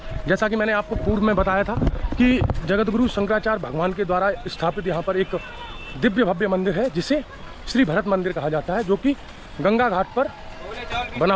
जैसा कि मैंने आपको पूर्व में बताया था कि जगतगुरु शंकराचार्य भगवान के द्वारा स्थापित यहाँ पर एक दिव्य भव्य मंदिर है जिसे श्री भरत मंदिर कहा जाता है, जो कि गंगा घाट पर बना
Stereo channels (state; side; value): identical; both; correlation 1.00